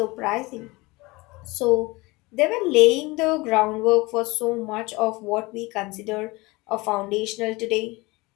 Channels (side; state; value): right; quieter; 23.2 dB